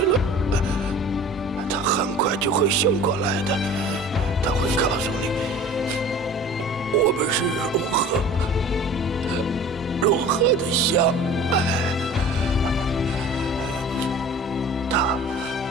了，她很快就会醒过来的。她会告诉你，我们是如何的相爱。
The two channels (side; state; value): both; normal; correlation 0.43